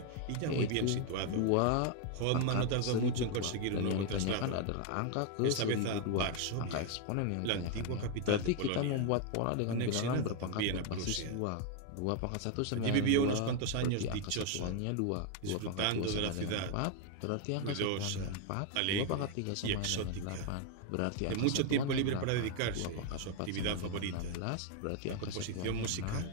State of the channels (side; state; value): both; different; correlation 0.01